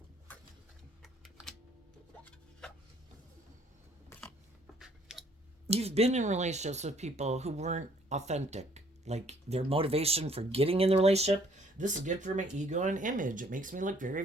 You've been in relationships with people who weren't authentic. Like, their motivation for getting in the relationship, this is good for my ego and image. It makes me look very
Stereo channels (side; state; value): both; normal; correlation 0.62